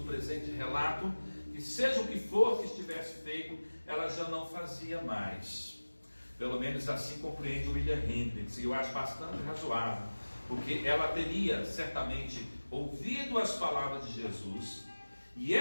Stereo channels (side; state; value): both; inverted; correlation -1.00